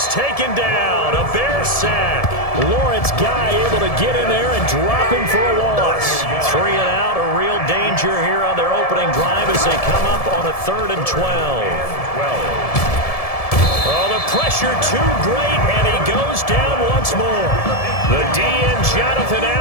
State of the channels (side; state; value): right; late; 1.7 ms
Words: taken down. A Bear sack. Lawrence Guy able to get in there and drop him for a loss. 3 and out. A real danger here on their opening drive as they come up on a 3rd and 12. Oh, the pressure too great, and he goes down once more. The DN, Jonathan